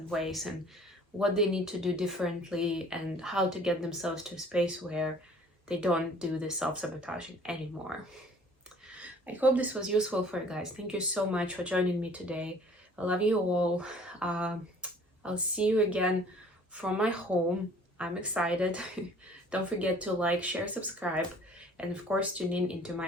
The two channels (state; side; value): normal; both; correlation 0.52